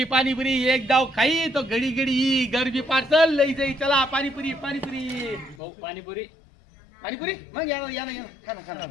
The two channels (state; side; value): drops out; right; at 5.6 s